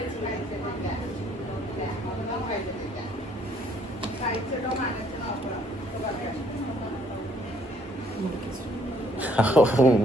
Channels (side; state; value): both; normal; correlation 0.64